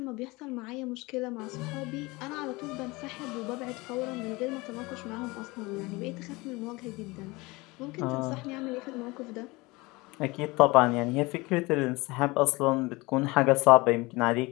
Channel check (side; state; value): right; quieter; 23.4 dB